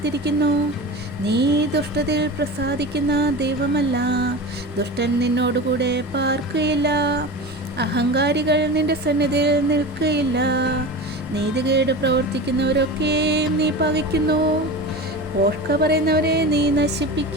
നീ ദുഷ്ടതയിൽ പ്രസാദിക്കുന്ന ദൈവമല്ല. ദുഷ്ടൻ നിന്നോടുകൂടെ പാർക്കുകയില്ല. അഹങ്കാരികൾ നിന്റെ സന്നിധിയിൽ നിൽക്കുകയില്ല. നീതികേട് പ്രവർത്തിക്കുന്നവരൊക്കെയും നീ പകയ്ക്കുന്നു. പോഷ്ക പറയുന്നവരെ നീ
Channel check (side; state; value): both; normal; correlation 0.30